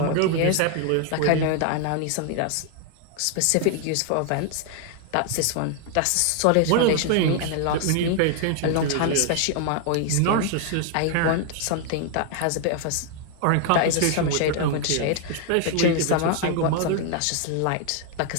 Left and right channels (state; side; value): different; both; correlation 0.00